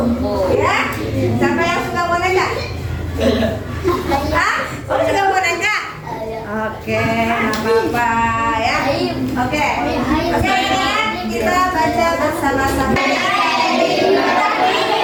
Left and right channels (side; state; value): both; identical; correlation 1.00